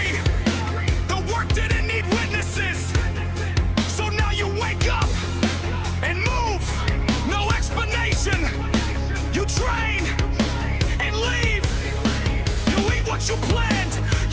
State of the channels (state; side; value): identical; both; correlation 1.00